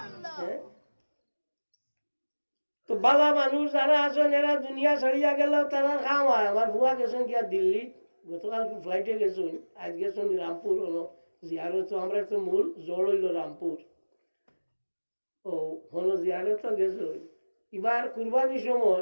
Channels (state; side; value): inverted; both; correlation -1.00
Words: তো বালা মানুষ যারা আছেন এরা দুনিয়া ছাড়িয়া গেল তারা খাওয়ায় আমার বুয়া গেছেন কি আর দিল্লি গতকাল ফ্লাইটে গেছেন আজ গেছেন রামপুর জিয়ারত আমরা তো মূল জড় হইল রামপুর ও হলো জিয়ারত গেছে এবার কুরবানির